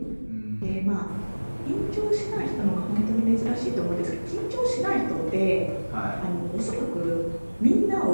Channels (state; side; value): inverted; both; correlation -1.00